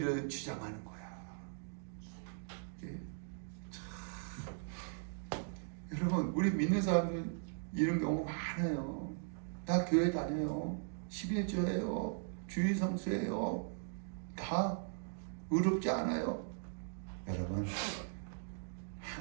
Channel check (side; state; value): left; silent; digital silence